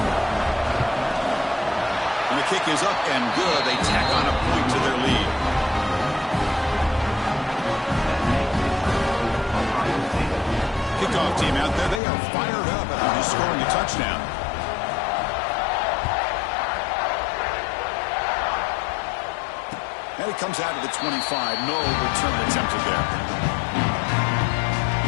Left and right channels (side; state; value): right; drops out; at 12.0 s